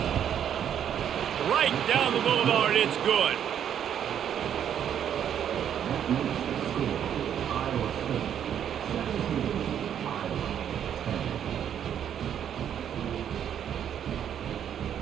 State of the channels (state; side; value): quieter; left; 9.3 dB